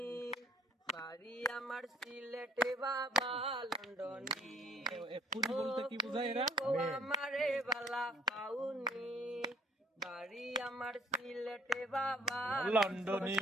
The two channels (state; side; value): normal; both; correlation 0.58